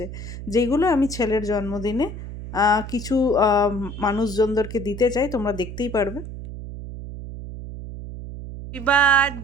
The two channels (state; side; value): noise; right; hum, 10 dB below the sound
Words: যেগুলো আমি ছেলের জন্মদিনে কিছু মানুষজনদেরকে দিতে চাই, তোমরা দেখতেই পারবে। Happy